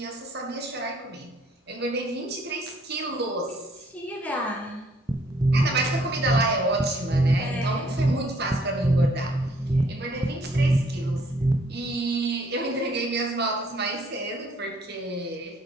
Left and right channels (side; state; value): both; normal; correlation 0.63